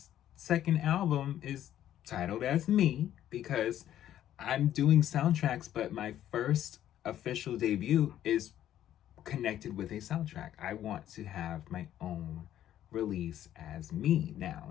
second album is titled as Me, because I'm doing soundtracks, but my first official debut is connected with a soundtrack. I want to have my own release as me now,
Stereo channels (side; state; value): right; quieter; 11.7 dB